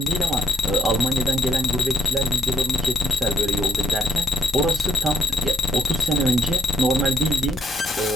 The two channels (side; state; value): both; normal; correlation 0.73